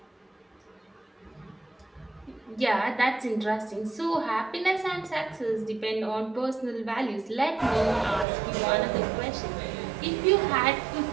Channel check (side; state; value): left; drops out; at 8.2 s